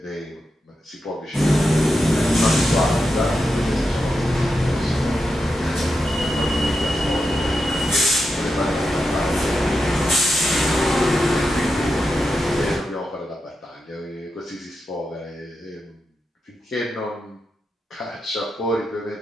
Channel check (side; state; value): both; normal; correlation 0.88